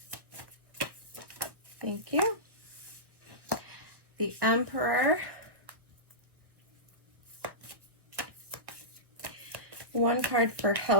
Thank you. The Emperor. One card for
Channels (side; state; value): left; late; 1.1 ms